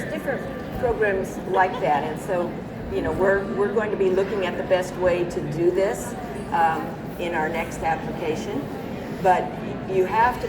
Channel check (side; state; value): both; identical; correlation 1.00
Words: different programs like that, and so we're going to be looking at the best way to do this in our next application. But you have to